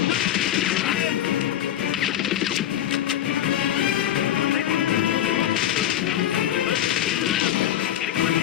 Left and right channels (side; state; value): right; quieter; 11.5 dB